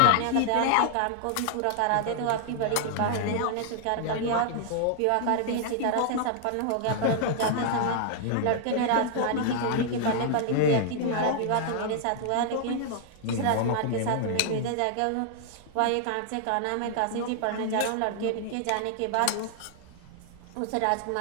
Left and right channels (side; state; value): both; different; correlation -0.01